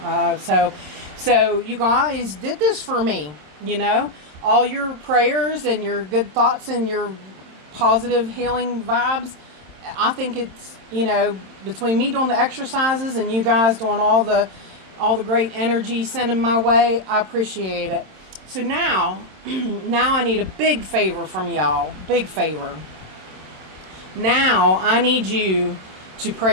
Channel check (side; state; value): left; late; 27 ms